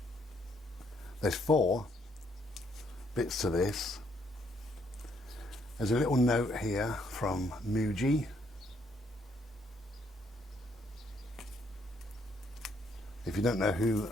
There's 4 bits to this. There's a little note here from Muji. If you don't know who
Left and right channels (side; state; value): both; normal; correlation 0.70